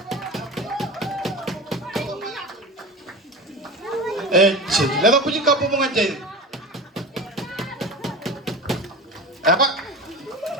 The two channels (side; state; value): both; normal; correlation 0.30